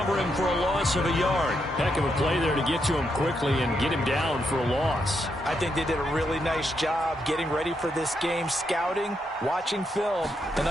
him for a loss of a yard. Heck of a play there to get to him quickly and get him down for a loss. I think they did a really nice job getting ready for this game, scouting, watching film, and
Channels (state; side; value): normal; both; correlation 0.80